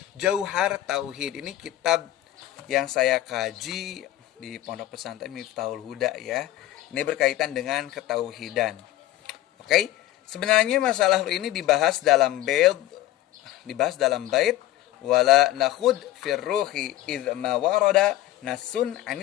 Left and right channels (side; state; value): right; quieter; 14.3 dB